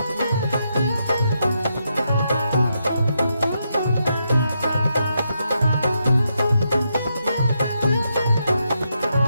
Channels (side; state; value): both; inverted; correlation -0.82